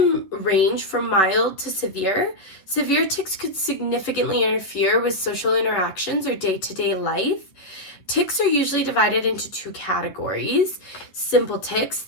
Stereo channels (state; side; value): late; right; 10 ms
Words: range from mild to severe. Severe tics could significantly interfere with social interactions or day-to-day life. Tics are usually divided into two categories. Simple tics.